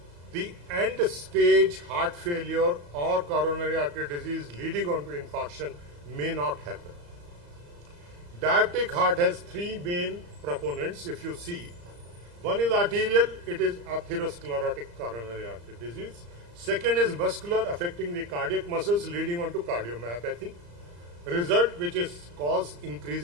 the end stage heart failure or coronary artery disease leading on to infarction may not happen. Diabetic heart has three main proponents, if you see. One is arterial, it is atherosclerotic coronary artery disease. Second is muscular, affecting the cardiac muscles leading on to cardiomyopathy, result which is cause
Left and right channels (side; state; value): left; late; 34 ms